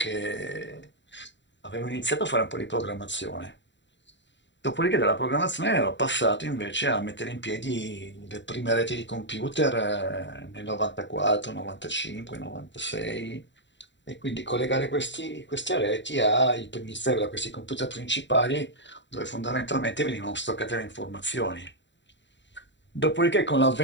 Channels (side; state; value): right; late; 0.53 ms